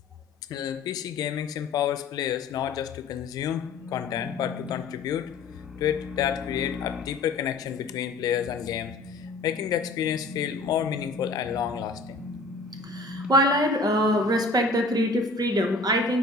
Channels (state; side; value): quieter; right; 3.2 dB